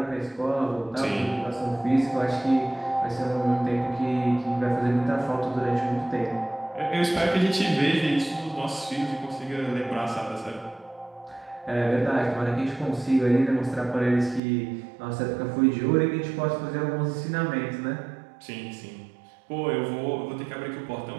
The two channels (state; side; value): drops out; left; at 14.4 s